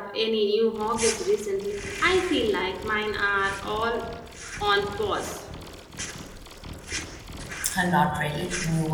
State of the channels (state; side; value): identical; both; correlation 1.00